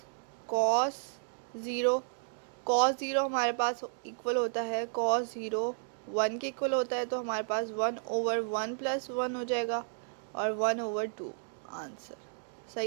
कॉस 0। कॉस 0 हमारे पास इक्वल होता है कॉस 0 1 के इक्वल होता है, तो हमारे पास 1 ओवर 1 प्लस 1 हो जाएगा और 1 ओवर 2 आंसर।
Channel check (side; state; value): left; silent; digital silence